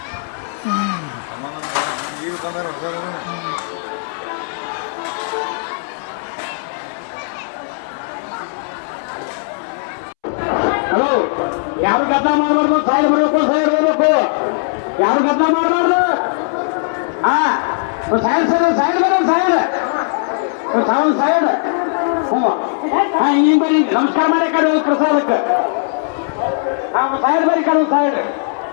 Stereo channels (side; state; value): right; silent; 68 dB below the other